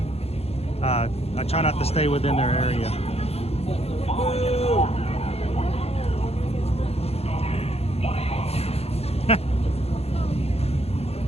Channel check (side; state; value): right; late; 0.30 ms